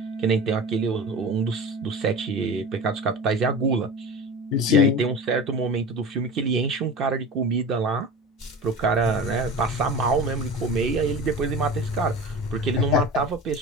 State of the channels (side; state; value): both; normal; correlation 0.33